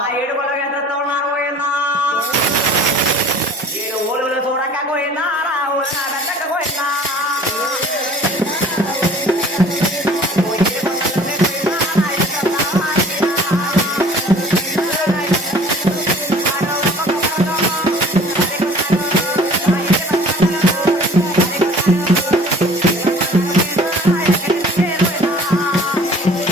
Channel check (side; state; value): both; normal; correlation 0.49